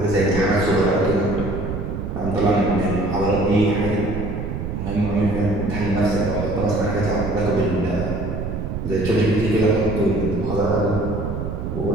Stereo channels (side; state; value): right; noise; rumble, 4 dB below the sound